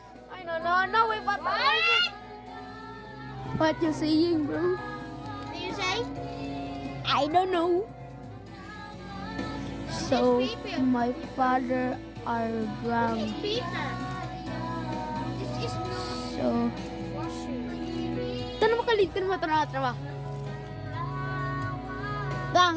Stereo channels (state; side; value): identical; both; correlation 1.00